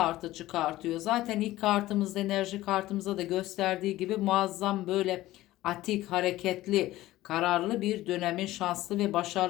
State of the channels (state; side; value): quieter; right; 16.3 dB